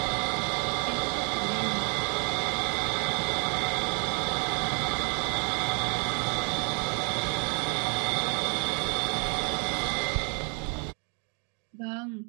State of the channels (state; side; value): quieter; left; 37.9 dB